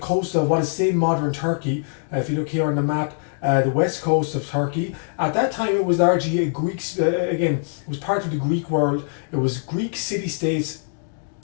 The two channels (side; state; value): right; silent; digital silence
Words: coast of what is today modern Turkey. If you look here on the map, the west coast of Turkey. At that time, it was largely a Greek. Again, it was part of the Greek world. It was Greek city-states,